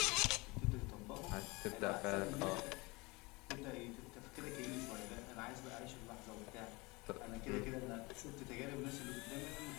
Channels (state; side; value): quieter; right; 25.1 dB